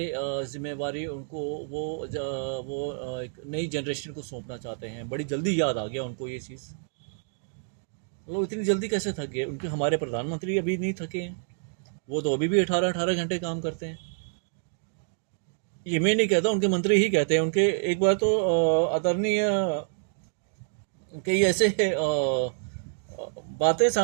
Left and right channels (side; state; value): left; silent; digital silence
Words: जिम्मेवारी उनको एक नई जनरेशन को सौंपना चाहते हैं। बड़ी जल्दी याद आ गया उनको ये चीज़। मतलब इतनी जल्दी कैसे थक गए? उनके हमारे प्रधानमंत्री अभी नहीं थके हैं। वो तो अभी भी 18-18 घंटे काम करते हैं। ये मैं नहीं कहता, उनके मंत्री ही कहते हैं। उनके एक बार तो आदरणीय कई ऐसे बातें